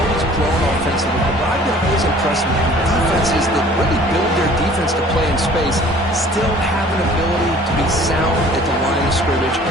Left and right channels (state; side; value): normal; both; correlation 0.51